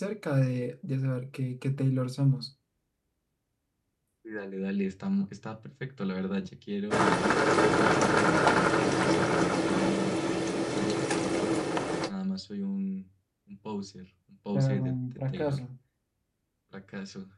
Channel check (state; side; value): identical; both; correlation 1.00